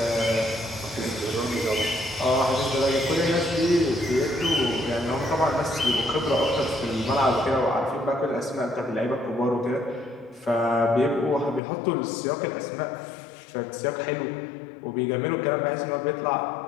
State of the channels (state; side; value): drops out; right; at 11.6 s